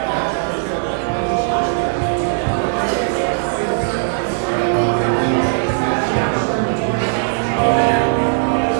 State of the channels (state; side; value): silent; left; digital silence